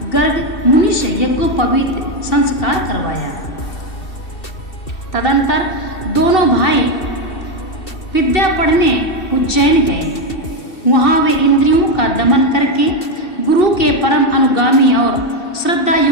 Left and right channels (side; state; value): right; late; 2.7 ms